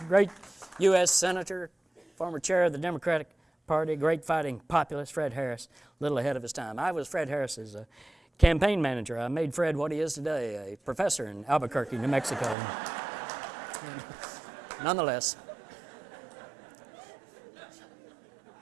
great U.S. Senator, former chair of the Democratic Party, great fighting populist, Fred Harris, a little ahead of his time. I was Fred Harris's campaign manager. I made Fred what he is today, a professor in Albuquerque, New Mexico. Nonetheless,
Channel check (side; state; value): left; drops out; at 12.6 s